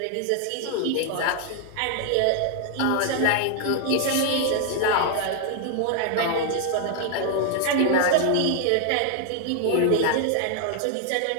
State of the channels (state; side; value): different; both; correlation 0.00